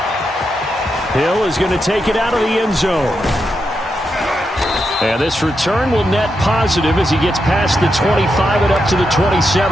Hill is going to take it out of the end zone. And this return will net positive as he gets past the 25 and up to the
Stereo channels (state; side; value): normal; both; correlation 0.85